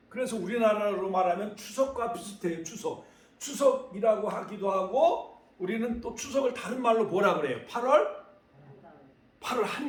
그래서 우리나라로 말하면 추석과 비슷해요. 추석이라고 하기도 하고 우리는 또 추석을 다른 말로 뭐라 그래요? 8월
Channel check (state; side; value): identical; both; correlation 1.00